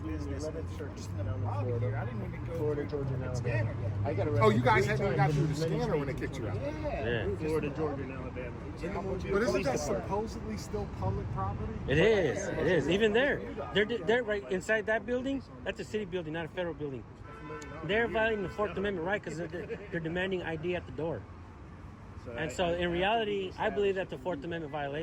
and it's just in the lobby here. I didn't even go through the scanner yet. Oh, you guys hadn't even got through the scanner when they kicked you out. Yeah. Florida, Georgia, and Alabama. But isn't that supposedly still public property? It is. Even there. They're right inside that building. That's a city building, not a federal building. They're violating the Fourth Amendment right because they're demanding ID at the door. And so in reality, I believe that's a Fourth Amendment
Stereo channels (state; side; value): identical; both; correlation 1.00